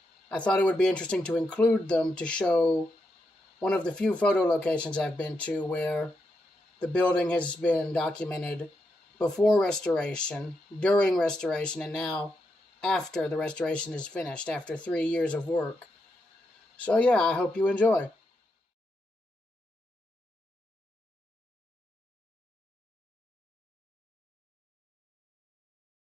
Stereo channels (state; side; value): normal; both; correlation 0.83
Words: I thought it would be interesting to include them to show one of the few photo locations I've been to where the building has been documented before restoration, during restoration, and now after the restoration is finished, after 3 years of work. So yeah, I hope you enjoy.